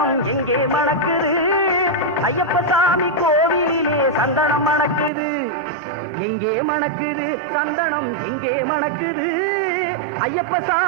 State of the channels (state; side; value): drops out; left; at 5.1 s